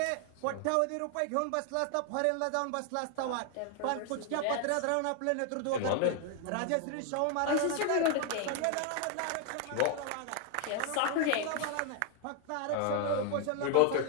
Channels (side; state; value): both; different; correlation 0.00